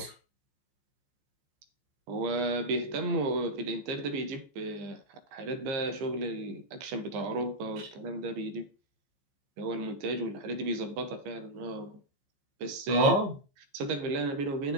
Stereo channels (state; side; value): late; left; 14 ms